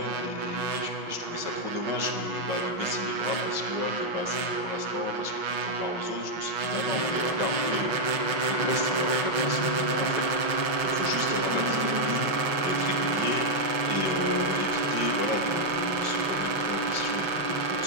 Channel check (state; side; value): late; left; 5.6 ms